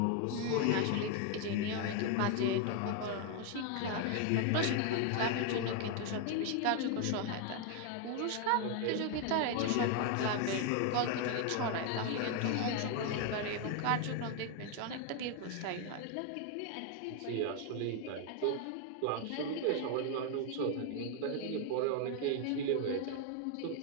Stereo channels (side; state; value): both; different; correlation 0.01